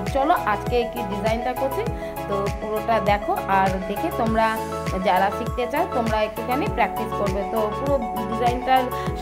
চলো আজকে কি ডিজাইনটা করছি, তো পুরোটা দেখো। আর দেখে তোমরা যারা শিখতে চাও তোমরা একটুখানি প্র্যাকটিস করবে। তো পুরো ডিজাইনটার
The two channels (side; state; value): both; identical; correlation 1.00